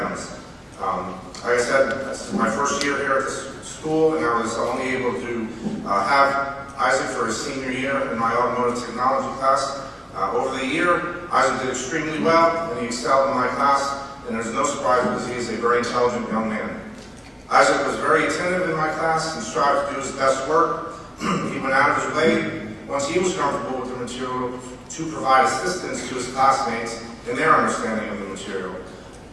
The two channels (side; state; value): both; identical; correlation 1.00